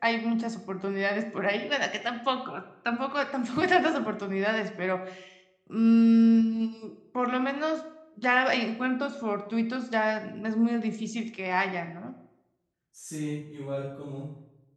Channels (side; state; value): both; identical; correlation 1.00